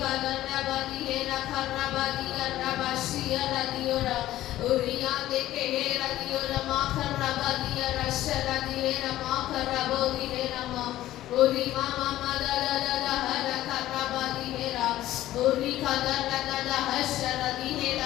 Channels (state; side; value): quieter; right; 14.4 dB